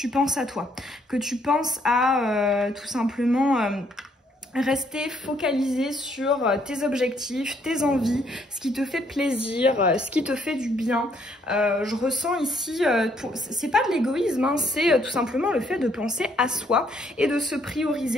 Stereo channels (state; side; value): normal; both; correlation 0.69